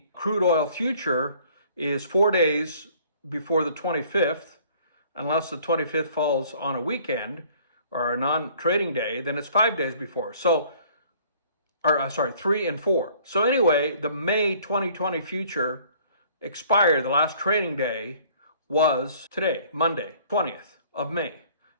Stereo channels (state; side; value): inverted; both; correlation -0.56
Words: crude oil future is 4 days before the 25th, unless the 25th falls on a weekend or a non-trading day, then it's 5 days before. 3 and 4. So anyway, the May 2020 future expired. The last trading day was today, Monday, 20th of May.